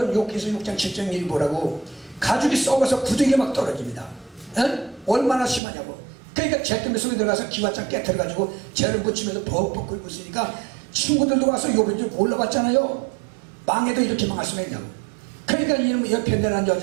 욕해서 6장 7장 1 보라고 가죽이 썩어서 부득이 막 떨어집니다. 얼마나 심하냐고. 그러니까 잿더미 속에 들어가서 기와장 깨트려가지고 죄를 묻히면서 벅벅 끓고 있으니까 친구들도 와서 요번 좀 올라봤잖아요. 망해도 이렇게 망할 수가 있냐고. 그러니까 이놈의 옆에 내란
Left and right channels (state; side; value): drops out; left; at 5.6 s